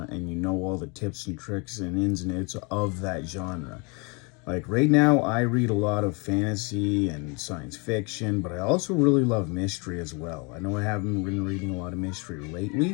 and you know all the tips and tricks and ins and outs of that genre. Like right now, I read a lot of fantasy and science fiction, but I also really love mystery as well. I know I haven't been reading a lot of mystery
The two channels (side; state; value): right; quieter; 31.2 dB